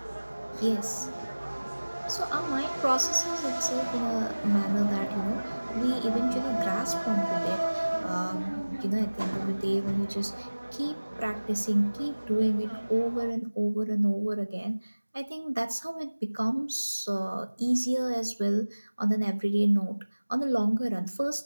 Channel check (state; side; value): inverted; both; correlation -1.00